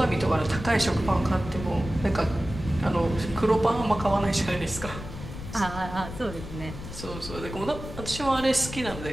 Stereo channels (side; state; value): left; noise; rumble, 10 dB below the sound